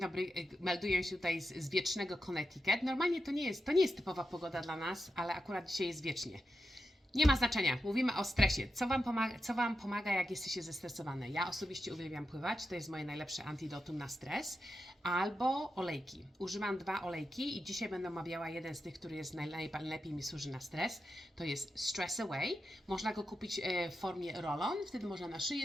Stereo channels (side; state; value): both; normal; correlation 0.89